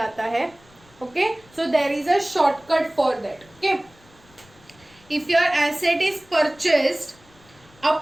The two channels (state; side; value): noise; left; rumble, 28 dB below the sound